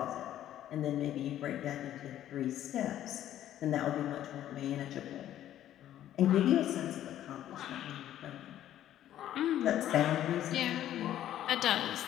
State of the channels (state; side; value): quieter; right; 12.0 dB